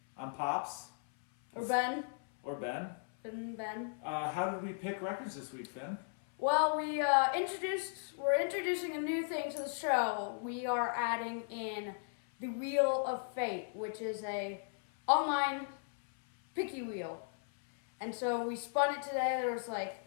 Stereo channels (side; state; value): right; silent; 54 dB below the other